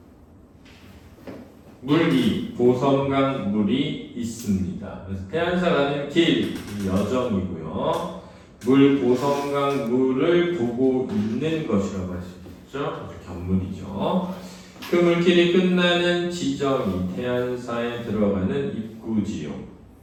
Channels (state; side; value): identical; both; correlation 1.00